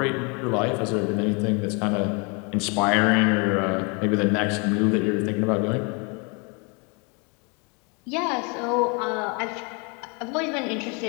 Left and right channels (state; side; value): quieter; right; 32.4 dB